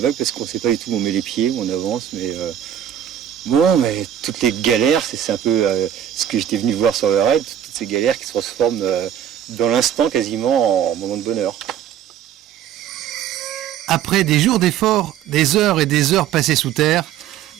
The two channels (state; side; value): quieter; left; 10.1 dB